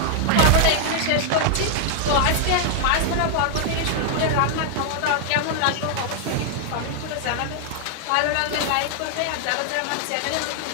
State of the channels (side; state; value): both; different; correlation 0.00